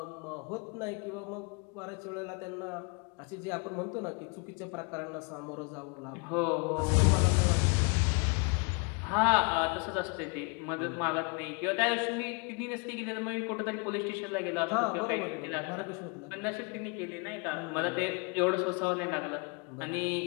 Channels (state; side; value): quieter; right; 33.1 dB